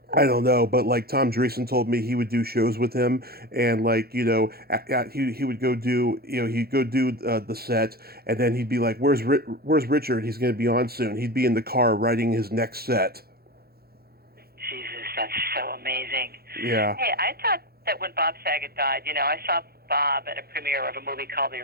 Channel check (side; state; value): left; late; 0.45 ms